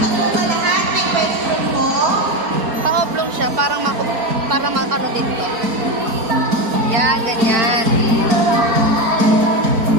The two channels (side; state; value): left; late; 4.3 ms